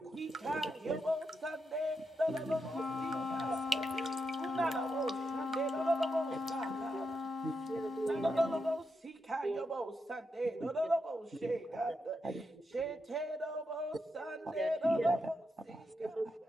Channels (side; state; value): both; normal; correlation 0.84